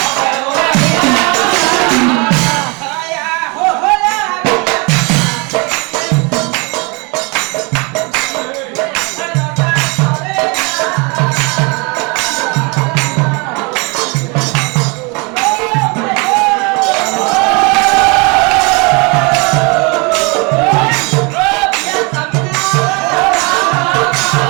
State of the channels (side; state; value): left; quieter; 30.1 dB